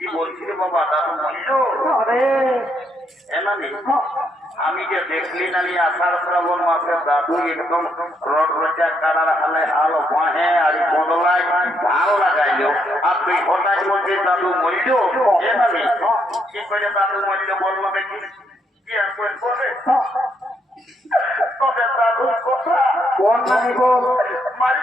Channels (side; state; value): both; normal; correlation 0.75